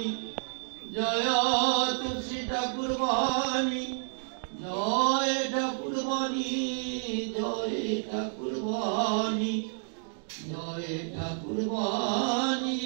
জয় তুলসী ঠাকুর বাণী, জয় ঠাকুর বাণী, জয় ঠাকুর বাণী, জয় ঠাকুর বাণী,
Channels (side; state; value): left; silent; digital silence